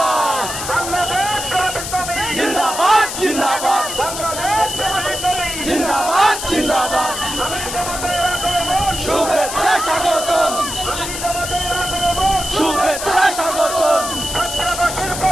জিন্দাবাদ জিন্দাবাদ জিন্দাবাদ জিন্দাবাদ শুভেচ্ছা স্বাগতম শুভেচ্ছা স্বাগতম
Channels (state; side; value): noise; left; hiss, 6 dB below the sound